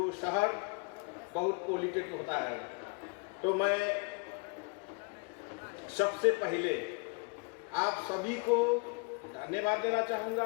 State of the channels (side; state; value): right; quieter; 32.9 dB